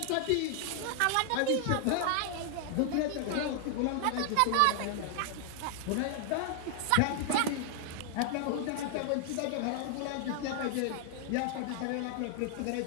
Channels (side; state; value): both; different; correlation 0.00